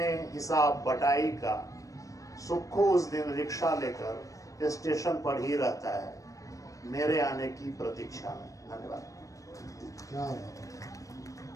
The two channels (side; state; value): right; late; 0.16 ms